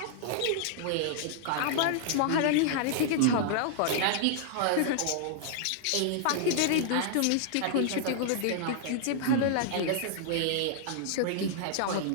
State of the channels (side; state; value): both; different; correlation -0.01